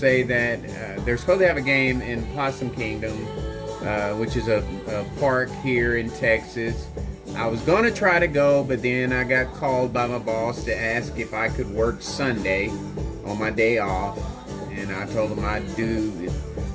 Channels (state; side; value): identical; both; correlation 1.00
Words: that they're supposed to have a game in Possum Kingdom, which is a park here in Texas. I was going to try to go, but then I got called by my boss to ask if I could work Sunday on my day off. And I told him I